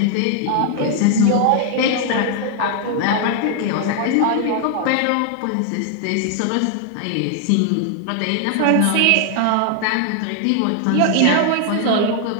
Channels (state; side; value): different; both; correlation 0.00